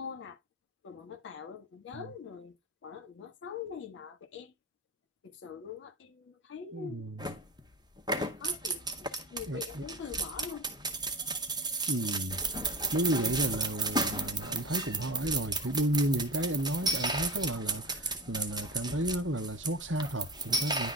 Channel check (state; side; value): normal; both; correlation 0.31